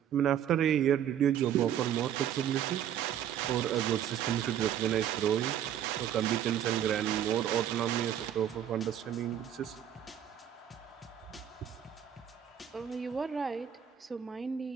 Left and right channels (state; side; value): quieter; left; 9.9 dB